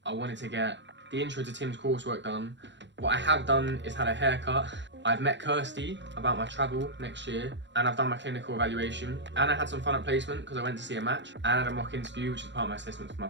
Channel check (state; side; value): late; left; 0.52 ms